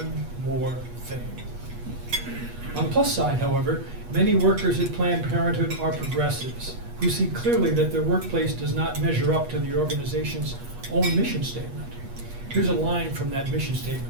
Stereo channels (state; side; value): late; left; 8.3 ms